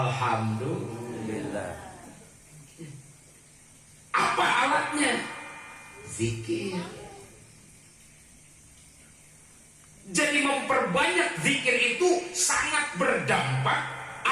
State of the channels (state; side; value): identical; both; correlation 1.00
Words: Apa alatnya? Zikir. Jadi memperbanyak zikir itu sangat berdampak